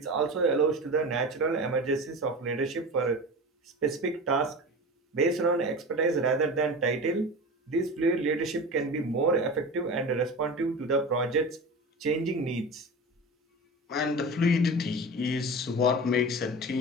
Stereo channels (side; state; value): both; normal; correlation 0.31